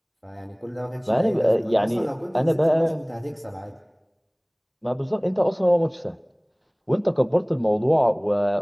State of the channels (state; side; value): identical; both; correlation 1.00